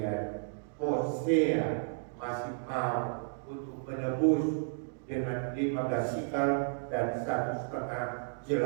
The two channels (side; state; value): left; silent; digital silence